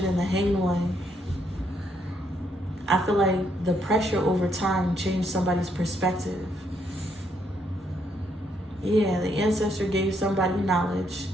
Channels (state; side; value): normal; both; correlation 0.74